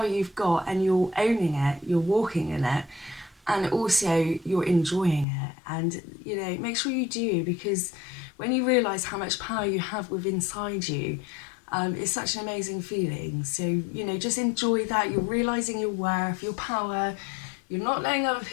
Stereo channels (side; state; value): right; drops out; at 5.2 s